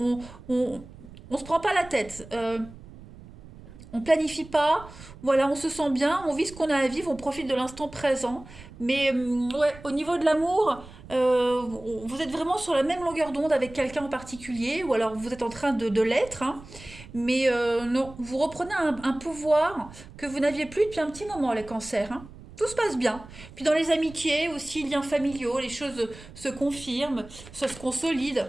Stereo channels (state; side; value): noise; right; rumble, 18 dB below the sound